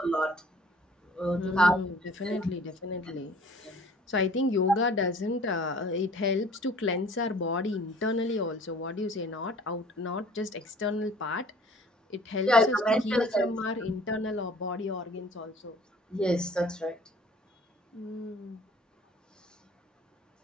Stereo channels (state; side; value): normal; both; correlation 0.50